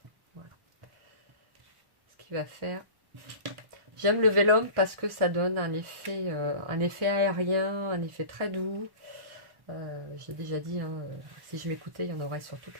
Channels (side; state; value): left; late; 1.1 ms